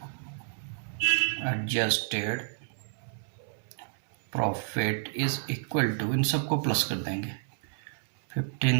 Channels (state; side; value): silent; left; 58 dB below the other